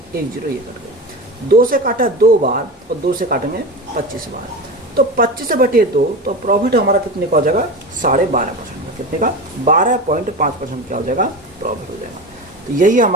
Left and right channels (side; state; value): both; normal; correlation 0.26